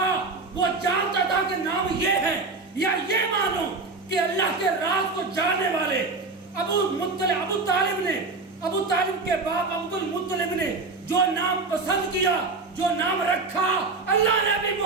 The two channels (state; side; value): quieter; left; 3.8 dB